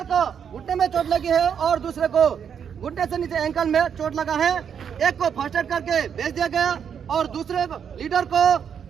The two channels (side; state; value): left; quieter; 7.7 dB